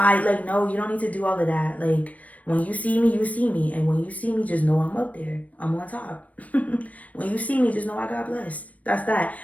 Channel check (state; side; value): late; right; 0.068 ms